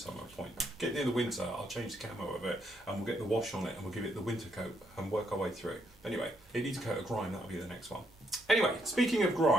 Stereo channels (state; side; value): normal; both; correlation 0.75